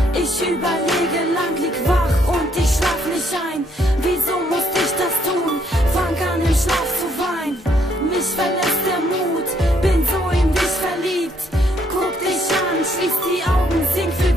Ich überlege lang, lieg wach und ich schlaf nicht ein. Wieso musste ich das tun? Fang an im Schlaf zu weinen. Mich verlässt der Mut, bin so in dich verliebt. Guck dich an, schließ die Augen, sing für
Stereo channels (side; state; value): both; normal; correlation 0.70